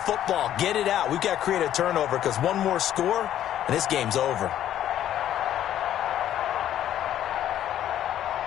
Get it out. We've got to create a turnover because one more score, and this game's over.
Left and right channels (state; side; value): quieter; right; 11.5 dB